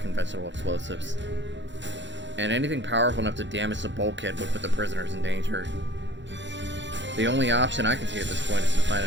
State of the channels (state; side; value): late; left; 0.53 ms